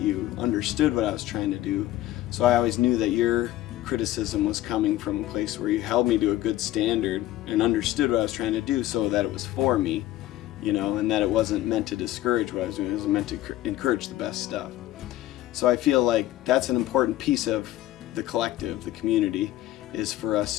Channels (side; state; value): right; quieter; 14.8 dB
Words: understood what I was trying to do. So I always knew that your criticism was coming from a place where you held me to a good standard and understood what I was trying to do, so that it was for me, you know, and that it wasn't meant to discourage what I was doing. It was meant to encourage the best stuff. So I feel like that's an important piece of the collective, the community, is for